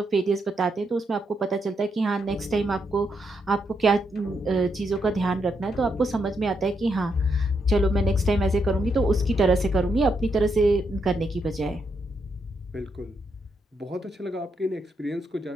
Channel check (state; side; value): normal; both; correlation 0.80